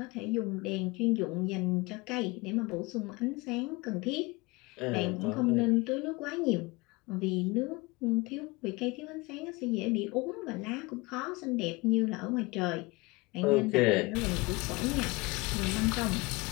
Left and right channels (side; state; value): right; quieter; 24.8 dB